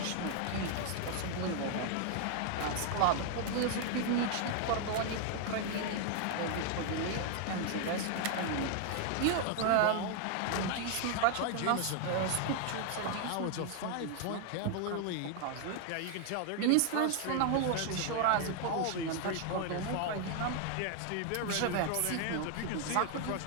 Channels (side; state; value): both; different; correlation 0.00